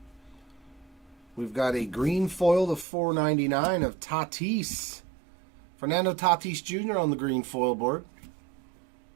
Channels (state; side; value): drops out; left; at 2.9 s